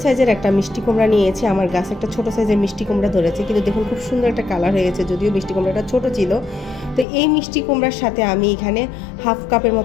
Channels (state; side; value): drops out; right; at 7.1 s